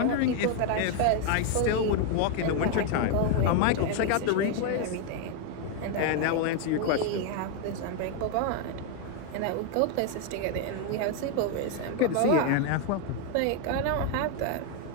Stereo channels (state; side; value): different; both; correlation 0.01